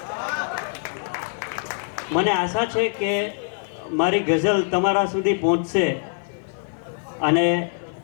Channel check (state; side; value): silent; right; digital silence